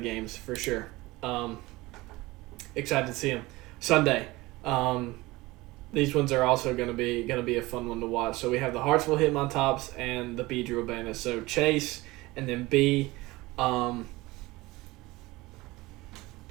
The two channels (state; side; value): quieter; left; 20.7 dB